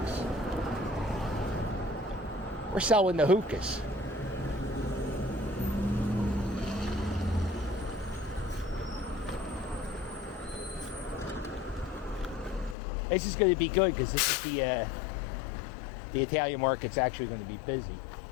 We're selling the hookahs. This is going to be good because this is the Italian market's actually going to be busy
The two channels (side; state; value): right; drops out; at 12.8 s